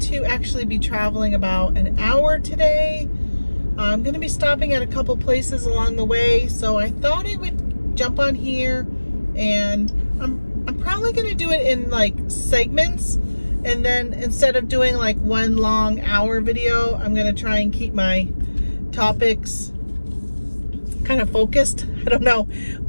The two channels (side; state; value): both; inverted; correlation -1.00